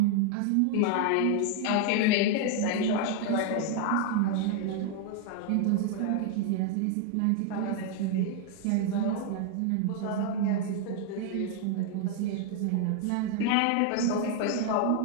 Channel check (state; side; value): different; both; correlation 0.00